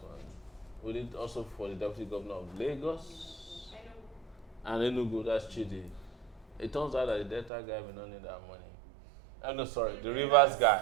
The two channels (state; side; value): drops out; left; at 7.5 s